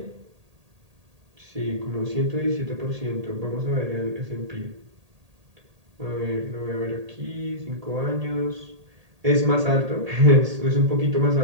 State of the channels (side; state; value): left; late; 1.8 ms